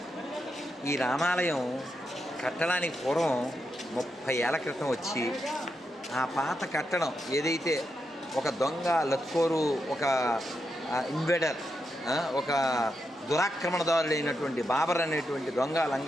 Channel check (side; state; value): both; normal; correlation 0.84